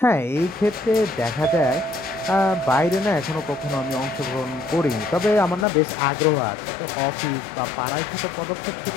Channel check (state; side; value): drops out; right; at 5.7 s